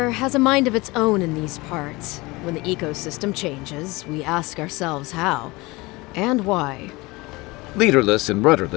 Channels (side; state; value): right; quieter; 22.9 dB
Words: has a mind of its own in these parts. When the ecosystem changes, we ask ourselves how and why. Leaderless and